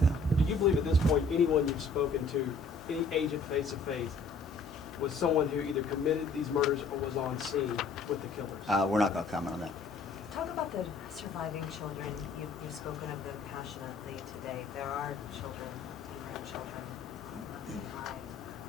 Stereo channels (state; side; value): quieter; right; 3.9 dB